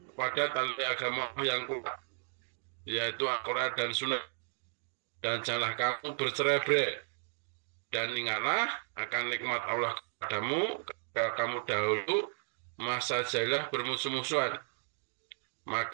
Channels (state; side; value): silent; left; digital silence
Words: pada tali agama yang kuat, yaitu Al-Quran dan Sunnah. Dan janganlah kamu bercerai-berai, dan ingatlah akan nikmat Allah kepadamu ketika kamu dahulu masa jahiliyah bermusuh-musuhan,